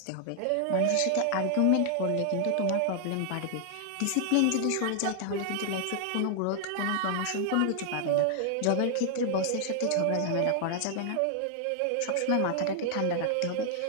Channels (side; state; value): both; different; correlation 0.00